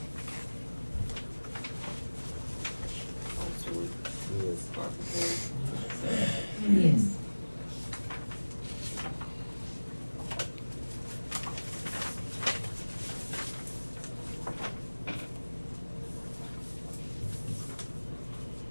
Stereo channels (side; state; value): both; inverted; correlation -1.00